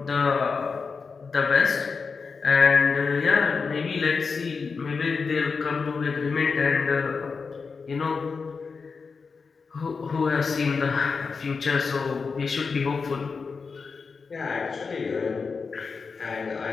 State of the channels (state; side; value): quieter; right; 5.0 dB